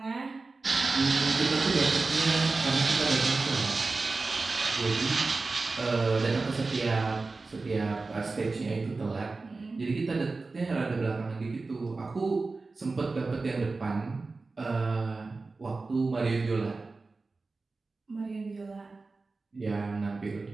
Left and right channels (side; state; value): left; quieter; 3.8 dB